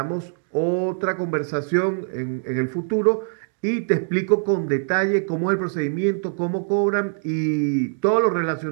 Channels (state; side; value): silent; left; digital silence